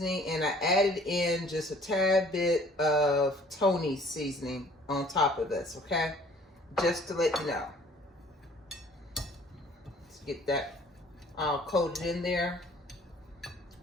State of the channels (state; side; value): normal; both; correlation 0.55